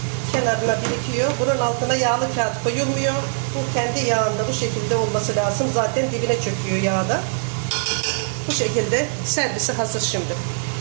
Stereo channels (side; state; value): left; silent; digital silence